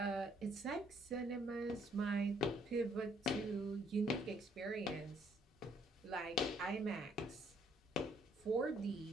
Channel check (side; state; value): both; normal; correlation 0.67